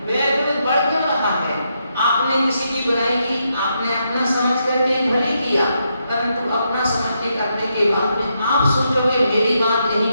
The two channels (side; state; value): both; inverted; correlation -0.81